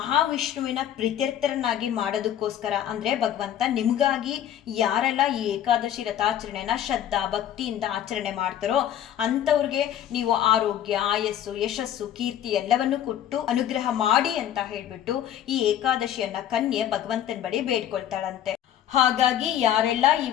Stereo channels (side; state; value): right; quieter; 10.8 dB